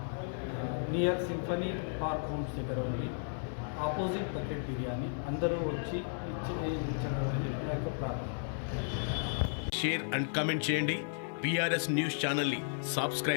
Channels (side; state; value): right; silent; 55 dB below the other